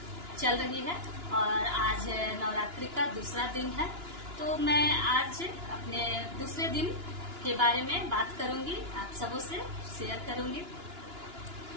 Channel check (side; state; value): left; late; 2.9 ms